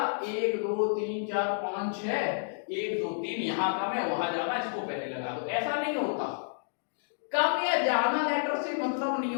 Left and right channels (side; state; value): right; silent; digital silence